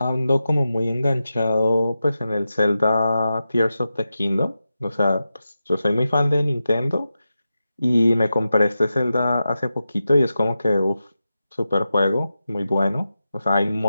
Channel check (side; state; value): both; inverted; correlation -0.91